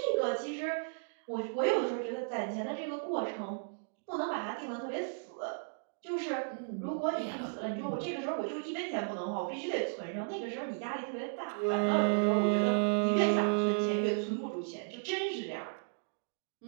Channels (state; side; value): silent; left; digital silence